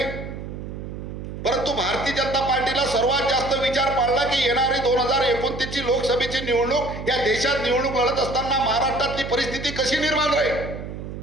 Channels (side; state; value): right; noise; hum, 9 dB below the sound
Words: परंतु भारतीय जनता पार्टीला सर्वात जास्त विचार पाडला की येणारी 2029 ची लोकसभेची निवडणूक, या देशात निवडणूक लढत असताना महाराष्ट्रातली परिस्थिती कशी निर्माण राहील.